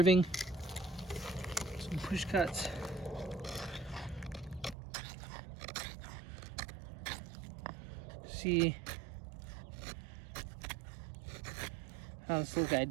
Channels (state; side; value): drops out; left; at 4.8 s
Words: some push cuts. See how this little guy